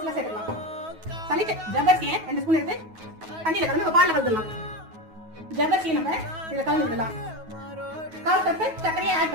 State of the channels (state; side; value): late; left; 9.3 ms